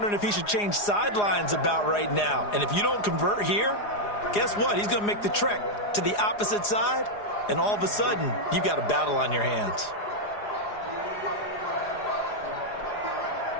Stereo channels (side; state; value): right; late; 4.9 ms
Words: if he should change sidelines about right now. And if you don't convert here, guess what? He's going to make the trek to the opposite side, and all of a sudden, you've got a battle on your hands.